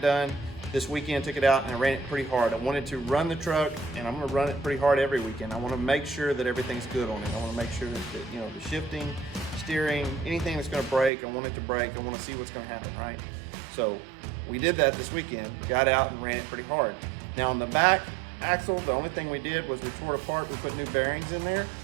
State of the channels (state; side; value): drops out; left; at 11.1 s